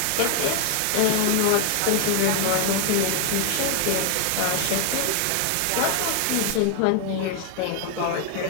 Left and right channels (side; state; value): both; different; correlation 0.00